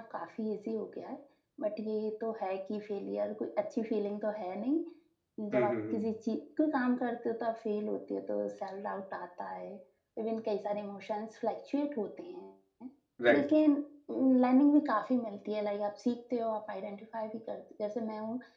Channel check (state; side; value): identical; both; correlation 1.00